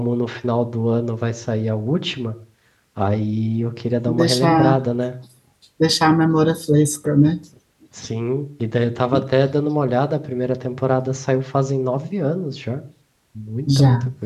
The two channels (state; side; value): identical; both; correlation 1.00